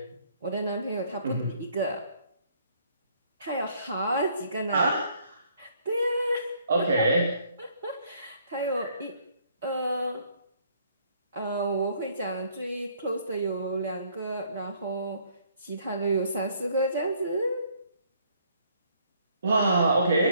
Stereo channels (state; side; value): inverted; both; correlation -0.64